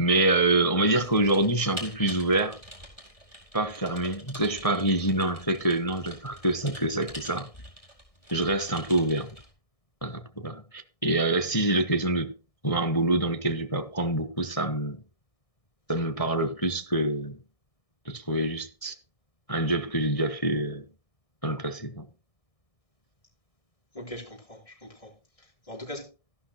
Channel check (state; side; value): late; right; 1.6 ms